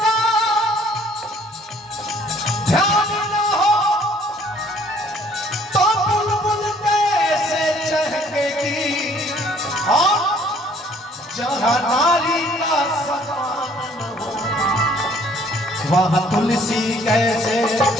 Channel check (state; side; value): normal; both; correlation 0.59